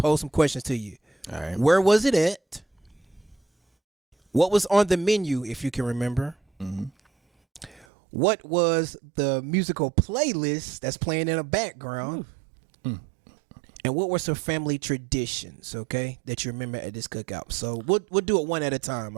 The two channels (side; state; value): left; drops out; at 7.9 s